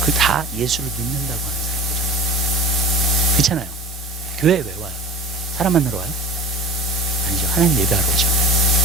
다 예수를 믿는다고 하는 사람들. 그렇잖아요. 교회에 왜 와요? 사람 만나러 와요? 아니죠. 하나님 예배하러 오죠.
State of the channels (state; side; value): normal; both; correlation 0.37